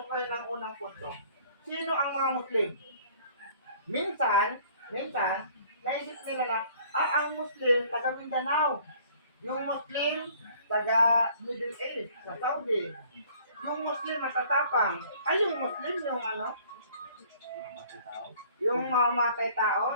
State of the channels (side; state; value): both; inverted; correlation -0.55